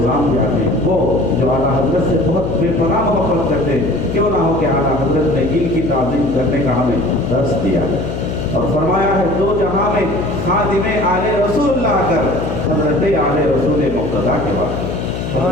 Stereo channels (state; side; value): noise; left; hum, 5 dB below the sound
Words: بھی آتے ہیں، وہ جو اعلیٰ حضرت سے بہت بے پناہ محبت کرتے ہیں. کیوں نہ ہو کہ اعلیٰ حضرت نے ان کی تعظیم کرنے کا ہمیں درس دیا ہے اور فرمایا ہے دو جہاں میں خادم آل رسول اللہ کر حضرت آل رسول مقتدا کے بعد.